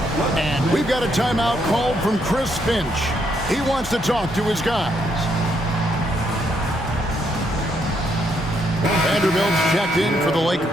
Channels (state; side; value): normal; both; correlation 0.74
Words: And we've got a timeout called from Chris Finch. He wants to talk to his guys. Vanderbilt's checked in for the